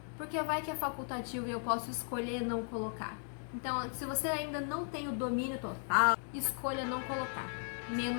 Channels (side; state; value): right; silent; 53 dB below the other